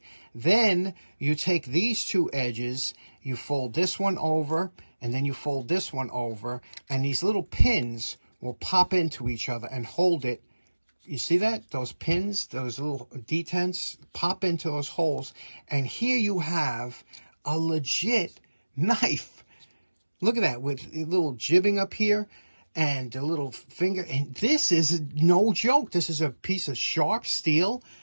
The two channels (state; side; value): inverted; both; correlation -1.00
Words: Then you take these two edges, you fold this one over, and then you fold this one over, and these little pins will pop into each other and hold it. You see that? Those pins, those little detents pop into those holes, and here you have a legit knife. Look at that, with a little jibbing up here. and the little finger. And this is no joke. This is a piece of sharp steel,